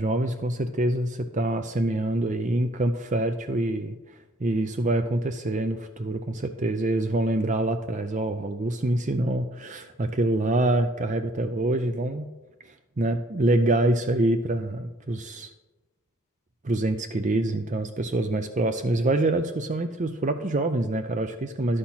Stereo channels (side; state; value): both; normal; correlation 0.61